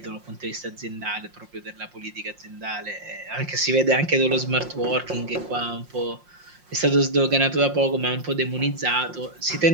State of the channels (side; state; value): left; late; 5.6 ms